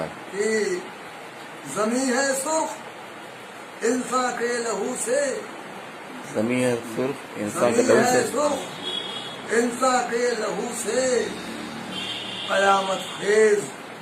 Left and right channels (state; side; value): identical; both; correlation 1.00